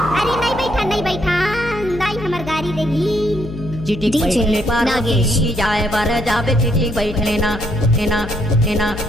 अरे नहीं बैठा दाई हमर गाड़ी देगी। चिटिक बैठले नागेश जाए बार जाबे चिटिक बैठ लेना एना एना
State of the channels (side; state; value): left; noise; hum, 11 dB below the sound